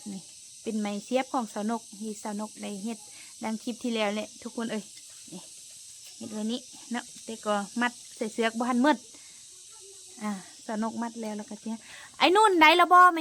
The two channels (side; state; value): both; identical; correlation 1.00